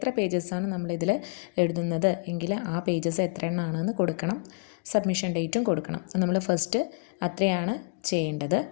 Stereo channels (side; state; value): right; quieter; 37.6 dB